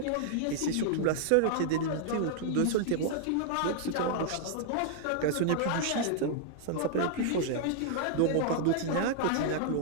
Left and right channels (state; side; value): different; both; correlation -0.01